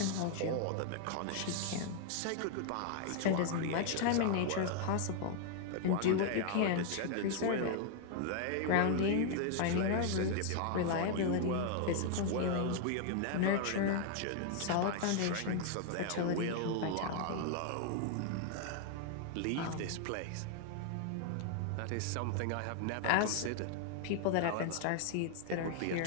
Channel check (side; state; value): both; different; correlation 0.00